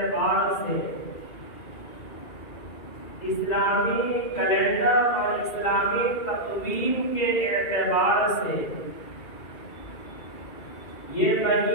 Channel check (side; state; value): right; late; 2.4 ms